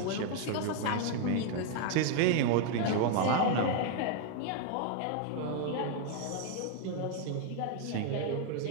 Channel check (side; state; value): both; different; correlation 0.01